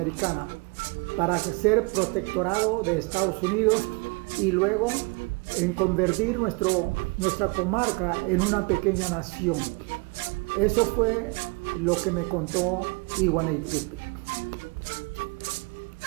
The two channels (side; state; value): left; quieter; 29.6 dB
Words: para ser protectorado de Estados Unidos y luego en convertir nuestra comarca en una pequeña nación. Eso fue lo que me contó Iguanitipip.